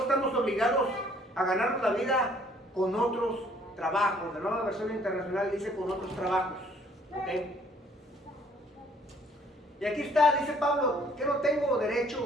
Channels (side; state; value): both; normal; correlation 0.61